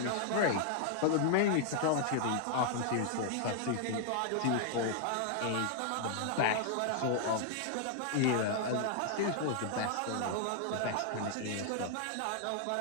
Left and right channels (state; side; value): different; both; correlation 0.00